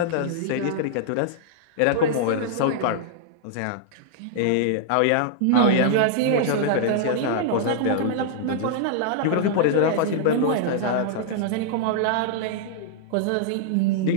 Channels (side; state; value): both; different; correlation -0.01